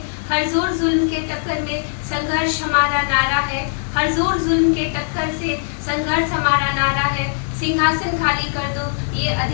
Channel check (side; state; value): right; silent; digital silence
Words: हर जोर जुल्म के टक्कर में संघर्ष हमारा नारा है। हर जोर जुल्म के टक्कर से संघर्ष हमारा नारा है। सिंहासन खाली कर दो, ये